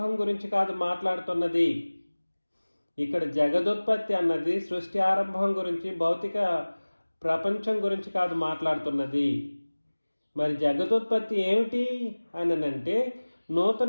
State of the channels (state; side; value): inverted; both; correlation -1.00